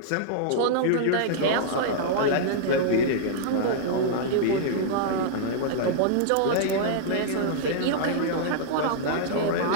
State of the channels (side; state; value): both; different; correlation -0.01